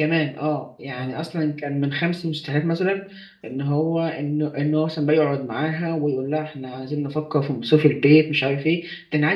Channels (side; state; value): both; identical; correlation 1.00